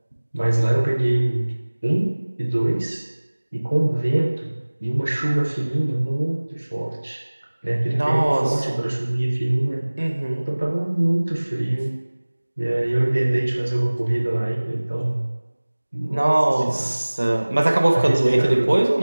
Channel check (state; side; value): inverted; both; correlation -1.00